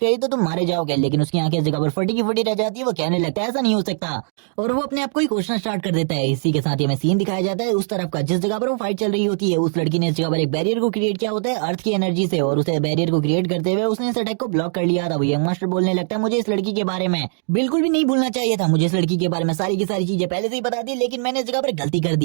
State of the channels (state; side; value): silent; left; 65 dB below the other